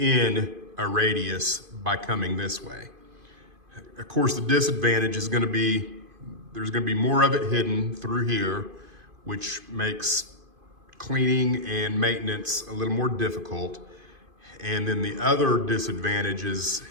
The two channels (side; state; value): left; late; 2.5 ms